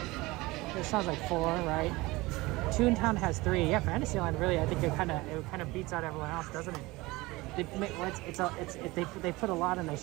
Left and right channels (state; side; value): quieter; left; 21.4 dB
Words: It sounds like 4, right? Toontown has 3. Yeah, Fantasyland really, I think it kind of beats out everyone else, doesn't it? They put a lot in a